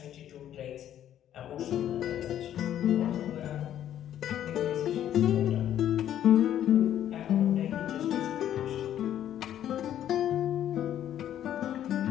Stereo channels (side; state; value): right; quieter; 11.0 dB